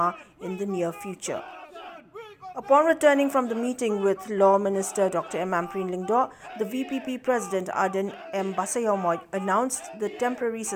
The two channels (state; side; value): identical; both; correlation 1.00